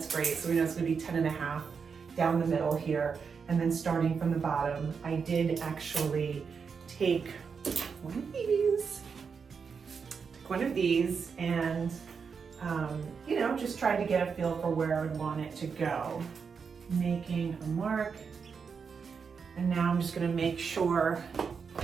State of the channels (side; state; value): left; quieter; 5.9 dB